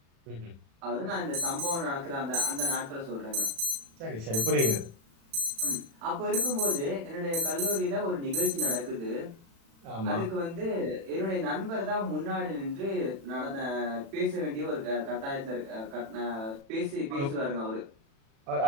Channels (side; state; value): left; late; 36 ms